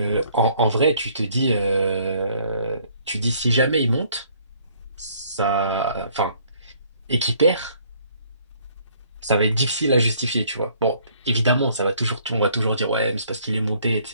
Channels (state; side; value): inverted; both; correlation -0.61